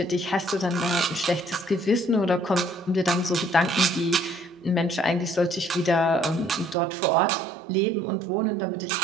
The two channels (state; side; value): drops out; left; at 6.8 s